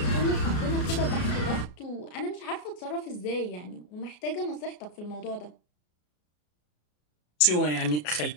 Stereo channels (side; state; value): right; late; 33 ms